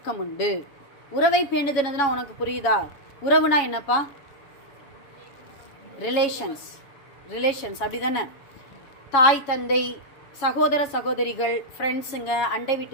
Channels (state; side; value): late; right; 7.2 ms